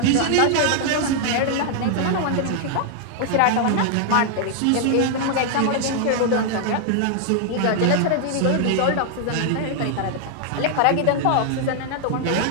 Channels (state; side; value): different; both; correlation 0.00